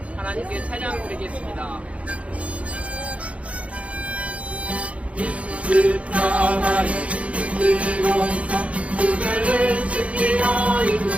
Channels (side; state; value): left; late; 0.064 ms